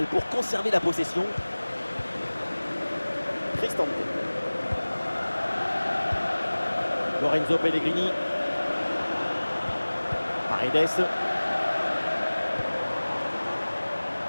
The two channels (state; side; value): inverted; both; correlation -1.00